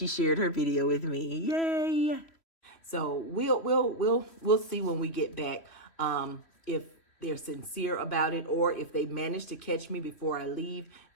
shared her video with me. Yay. So we'll see when we get back if they're sincere about it, or if they manage to catch me before I leave,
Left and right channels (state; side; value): late; right; 3.1 ms